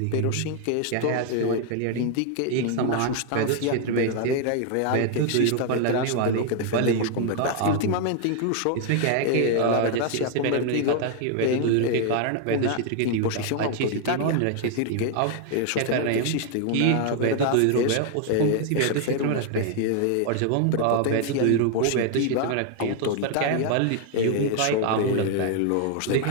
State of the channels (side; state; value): both; different; correlation 0.00